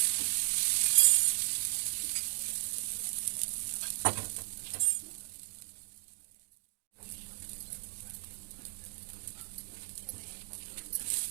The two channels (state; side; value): silent; left; digital silence